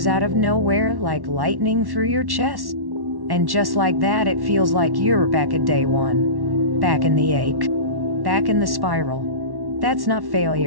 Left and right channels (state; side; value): late; left; 1.1 ms